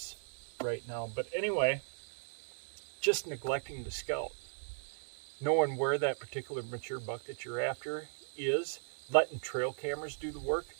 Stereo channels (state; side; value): silent; left; digital silence